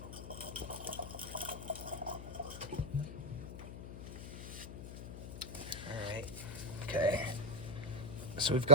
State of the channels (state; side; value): noise; left; hum, 8 dB below the sound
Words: Okay, so we've